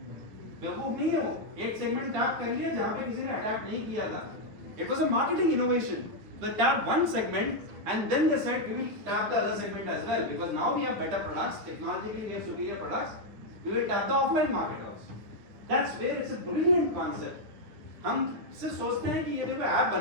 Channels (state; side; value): late; left; 9.5 ms